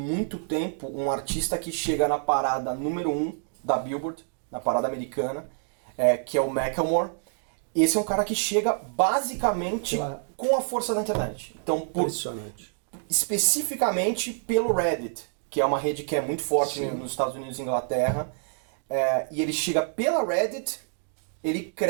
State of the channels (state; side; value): silent; left; digital silence